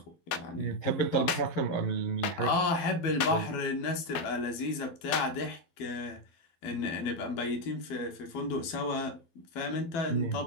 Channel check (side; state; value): right; late; 12 ms